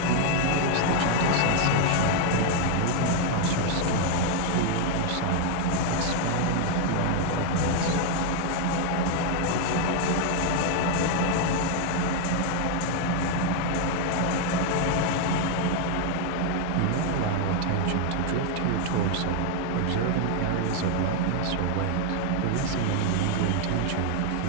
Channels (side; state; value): both; different; correlation 0.01